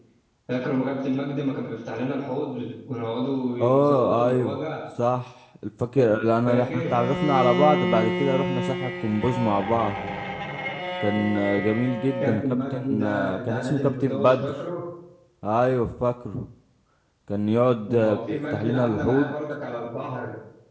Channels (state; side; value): identical; both; correlation 1.00